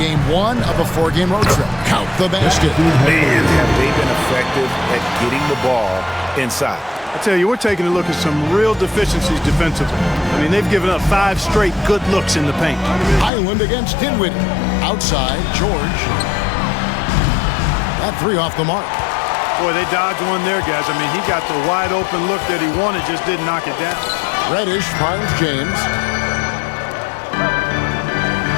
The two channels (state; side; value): drops out; right; at 13.3 s